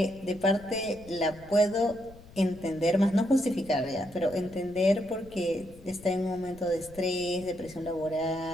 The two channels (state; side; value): noise; left; rumble, 21 dB below the sound